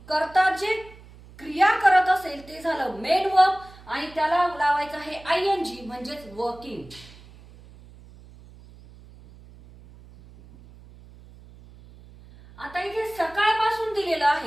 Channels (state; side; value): noise; right; hum, 22 dB below the sound